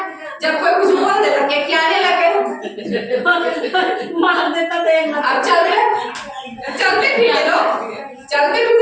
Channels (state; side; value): identical; both; correlation 1.00